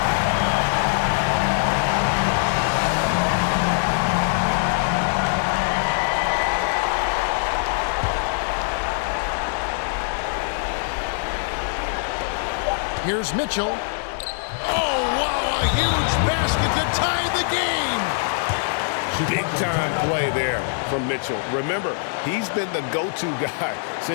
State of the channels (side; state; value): right; silent; digital silence